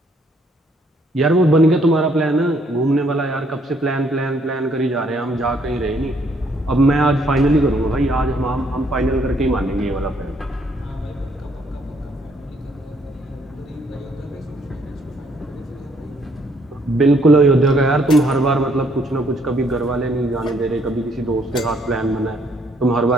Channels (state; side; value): normal; both; correlation 0.68